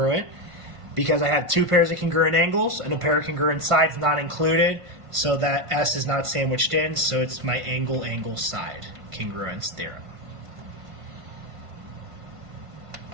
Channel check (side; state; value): left; late; 1.5 ms